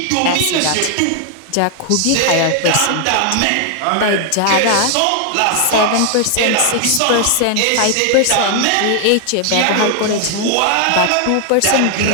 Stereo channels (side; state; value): both; different; correlation 0.00